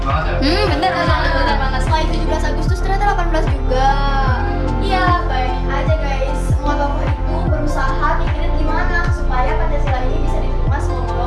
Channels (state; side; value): identical; both; correlation 1.00